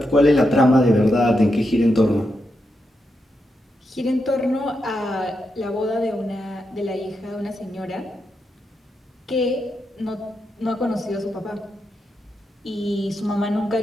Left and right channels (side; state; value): both; normal; correlation 0.85